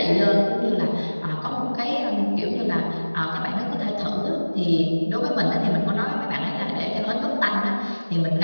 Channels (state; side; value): inverted; both; correlation -1.00